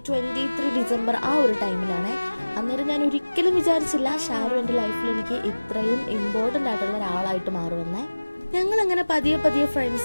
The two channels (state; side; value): inverted; both; correlation -1.00